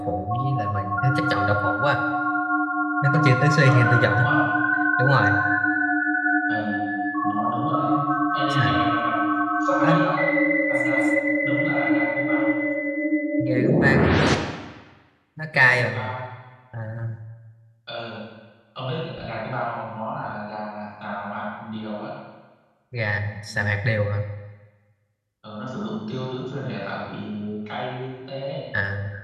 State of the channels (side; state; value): both; identical; correlation 1.00